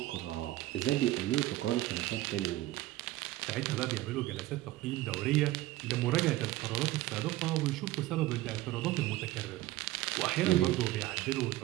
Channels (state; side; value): quieter; left; 16.8 dB